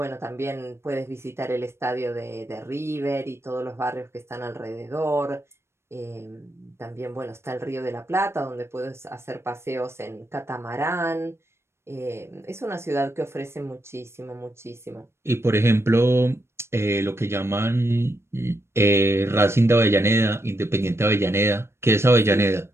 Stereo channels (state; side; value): late; left; 0.13 ms